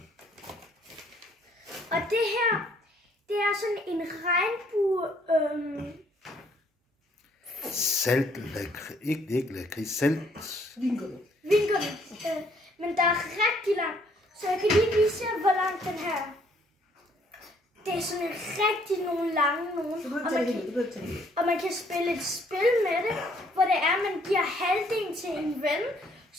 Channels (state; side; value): normal; both; correlation 0.65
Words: Og det her, det er sådan en regnbue... Salt, ikke lakrids, salt. Vingummi. Men der er rigtig lang, så jeg kan lige vise jer, hvor lang den her er. Det er sådan rigtig nogle lange nogen. Og man kan spille et spil med det, hvor det er, man giver halvdelen til en ven.